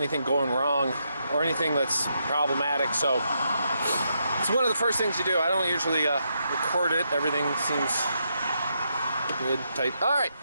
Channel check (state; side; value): inverted; both; correlation -0.80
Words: going wrong or anything that's problematic. So it's one of the first things you do. I don't usually record it. Everything seems good, tight. All right.